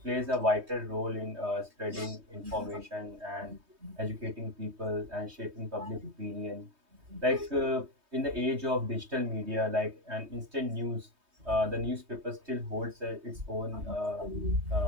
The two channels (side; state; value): left; late; 3.2 ms